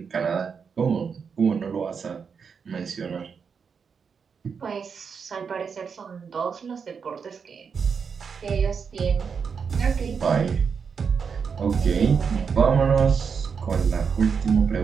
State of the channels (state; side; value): quieter; left; 6.1 dB